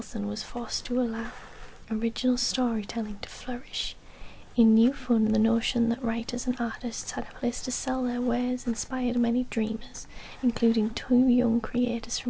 was forced to allow original storytelling to flourish. In New Fun, the notion that writers and artists had a place to sell their wares inspired many dreamers, including two young creators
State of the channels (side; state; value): both; identical; correlation 1.00